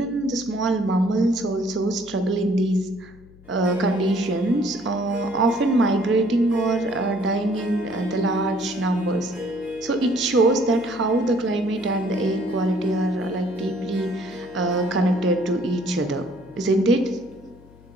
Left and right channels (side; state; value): left; noise; hum, 24 dB below the sound